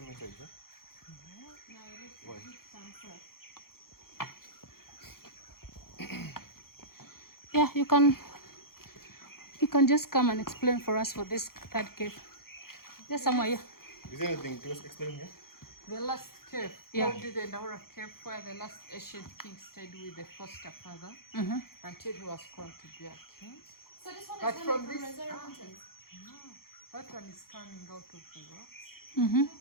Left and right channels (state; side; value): late; right; 0.93 ms